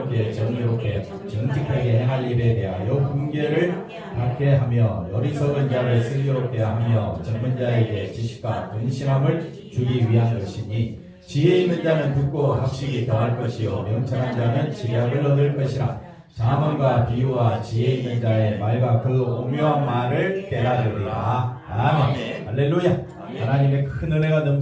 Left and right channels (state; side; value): identical; both; correlation 1.00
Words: 정의롭게 정직하게 행할 일에 대하여 훈계를 받게 하며 어리석은 자를 슬기롭게 하며 젊은 자에게 지식과 근신함을 주기 위한 것이니, 지혜 있는 자는 듣고 학식이 더할 것이요 명철한 자는 지략을 얻을 것이라. 잠언과 비유와 지혜 있는 자의 말과 그 오묘한 말을 깨달으리라. 아멘. 할렐루야. 하나님의 큰 은혜가